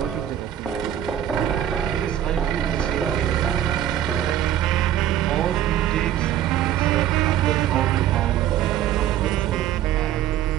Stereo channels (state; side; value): quieter; left; 11.4 dB